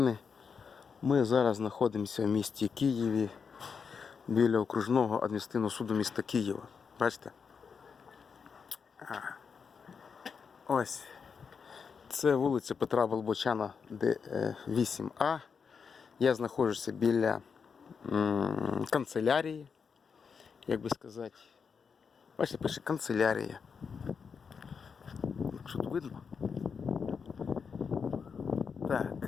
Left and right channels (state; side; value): quieter; right; 6.0 dB